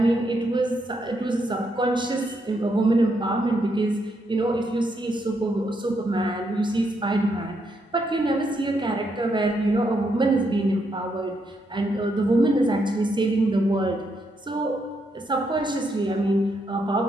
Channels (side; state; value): both; normal; correlation 0.78